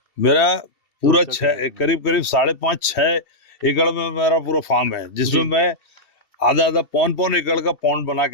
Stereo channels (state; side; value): late; right; 2.7 ms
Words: मेरा पूरा करीब 5.5-6 एकड़ में मेरा पूरा फार्म है, जिसमें मैं आधा 5 एकड़ का पॉन्ड बना